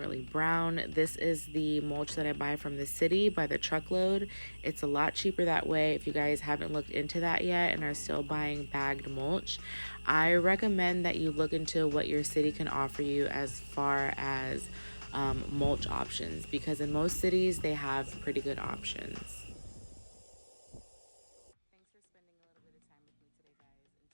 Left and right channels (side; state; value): both; inverted; correlation -1.00